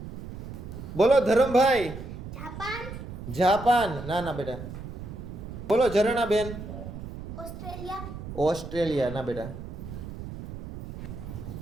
બોલો ધરમભાઈ. જાપાન. જાપાન ના ના બેટા. બોલો ઝરણા બેન. ઓસ્ટ્રેલિયા. ઓસ્ટ્રેલિયા ના બેટા.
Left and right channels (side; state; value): right; noise; rumble, 10 dB below the sound